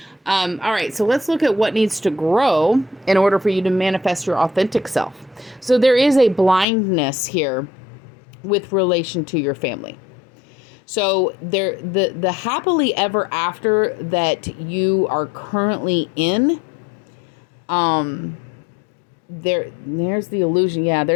All right, so let's look at what needs to grow in order for you to manifest your authentic self. So there is a blindness here with relation to your family. So the happily ever after that you are currently in, there's the illusion. Yeah,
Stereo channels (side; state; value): right; drops out; at 6.7 s